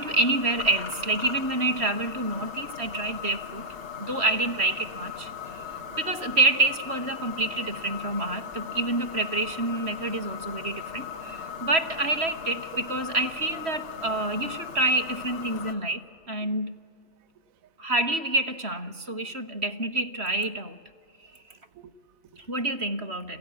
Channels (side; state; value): left; late; 3.1 ms